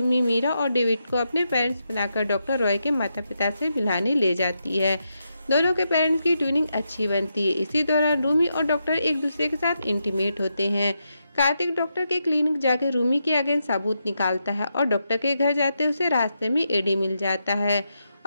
मीरा और डेविड को अपने पेरेंट्स बनाकर डॉक्टर रॉय के माता पिता से मिलाने ले जाती है। दोनों के पेरेंट्स की ट्यूनिंग अच्छी बनती है। इसी दौरान रूमी और डॉक्टर एक दूसरे के साथ इंटीमेट होते हैं। कार्तिक डॉक्टर के क्लिनिक जाकर रूमी के अगेंस्ट सबूत निकालता है और डॉक्टर के घर जाते उसे रास्ते में एडी मिल जाता है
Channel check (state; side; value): inverted; both; correlation -0.84